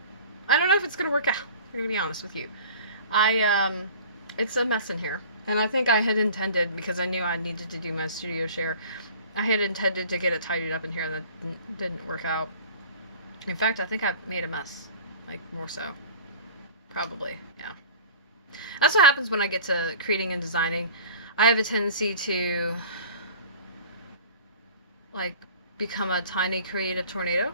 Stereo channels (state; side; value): inverted; both; correlation -0.43